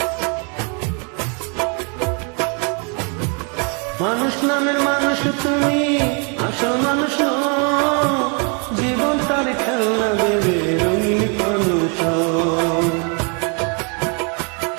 মানুষ নামের মানুষ তুমি, আসল মানুষ জীবন তার খেলনা দেবে রঙিন মানুষ।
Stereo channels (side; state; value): left; quieter; 36.6 dB